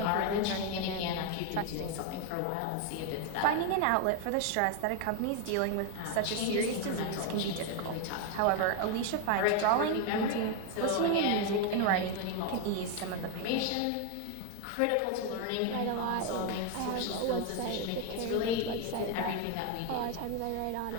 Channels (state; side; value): different; both; correlation 0.01